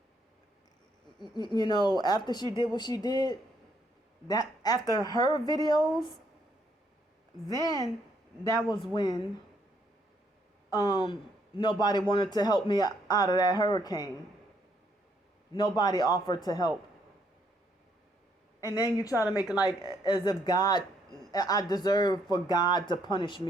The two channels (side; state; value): both; normal; correlation 0.71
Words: after she did what she did, that after her videos, then that was when nobody wanted to help me out of that hurricane. Nobody offered to help. And then you try to make it like as if I deserve for God to punish